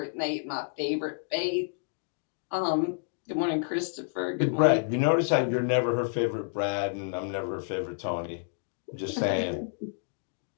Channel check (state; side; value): silent; right; digital silence